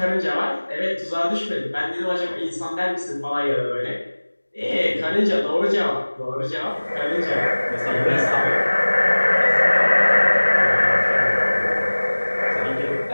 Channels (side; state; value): both; inverted; correlation -1.00